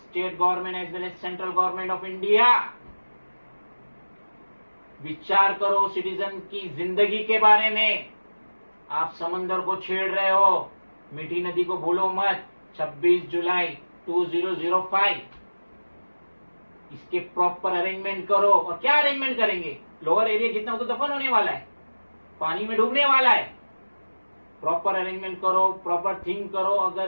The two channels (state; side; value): inverted; both; correlation -1.00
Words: government as well as central government of India, विचार करो सिटीजन की जिंदगी के बारे में। आप समंदर को छेड़ रहे हो, मीठी नदी को भूलो मत। 26 जुलाई 2005 इसके प्रॉपर अरेंजमेंट करो। और क्या अरेंजमेंट करेंगे, लोअर एरिया जितना वो तो दफन होने वाला है, पानी में डूबने वाला है। प्रॉपर अरेंजमेंट करो, प्रॉपर थिंक करो।